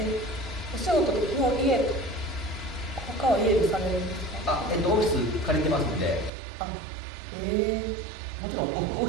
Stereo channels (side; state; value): left; drops out; at 6.3 s